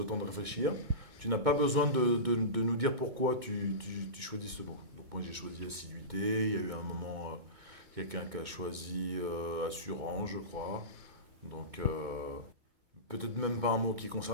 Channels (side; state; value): left; late; 2.2 ms